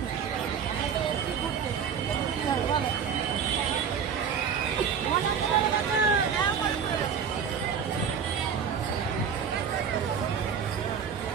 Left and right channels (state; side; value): quieter; left; 7.1 dB